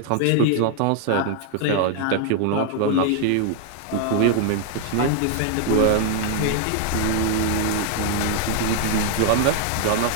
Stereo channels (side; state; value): both; different; correlation 0.00